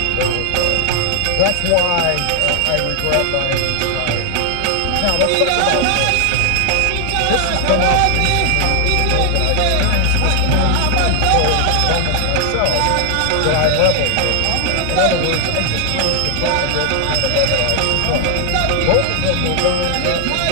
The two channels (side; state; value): both; different; correlation 0.00